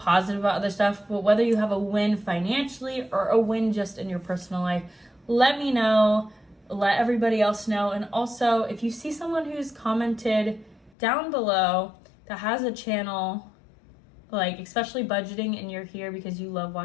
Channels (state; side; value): drops out; right; at 10.9 s